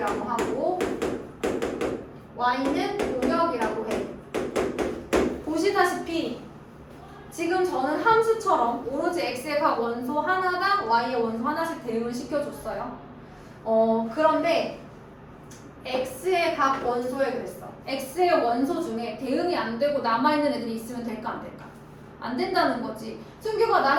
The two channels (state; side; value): identical; both; correlation 1.00